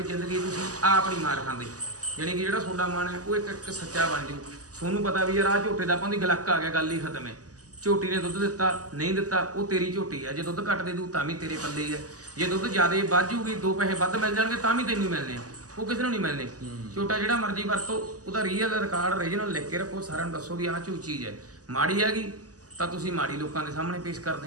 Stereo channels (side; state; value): left; late; 0.67 ms